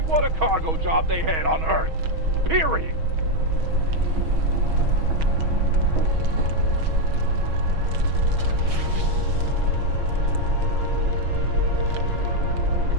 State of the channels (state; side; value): late; left; 6.3 ms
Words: cargo job they had on Earth. Period.